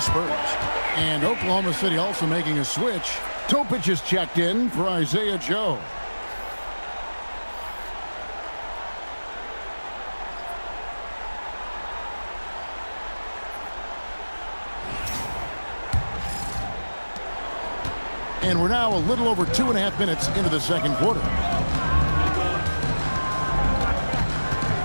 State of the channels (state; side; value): inverted; both; correlation -1.00